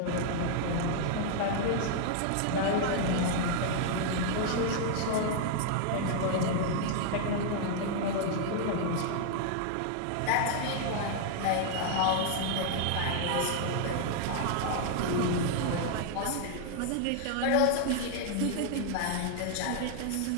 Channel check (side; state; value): both; different; correlation 0.00